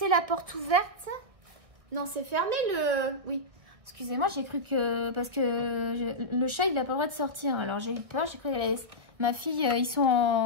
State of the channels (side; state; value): left; late; 1.6 ms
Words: la porte ouverte. Non, c'est fermé le... Oui, excusez-moi, j'ai cru que... Parce que le chat, il n'a pas le droit de sortir. Alors j'ai eu peur, j'ai cru qu'elle allait... Ma fille, ils sont